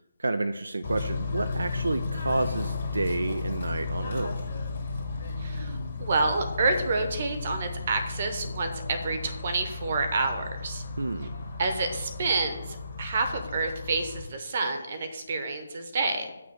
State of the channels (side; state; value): both; inverted; correlation -0.79